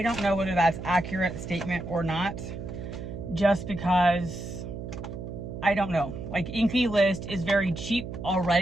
don't know whether that's accurate statement or not, just because I don't know. Like, Inky List is very cheap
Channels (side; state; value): right; noise; hum, 8 dB below the sound